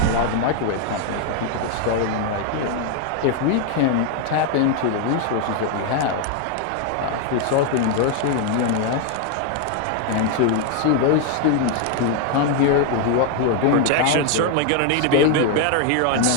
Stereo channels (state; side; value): different; both; correlation 0.01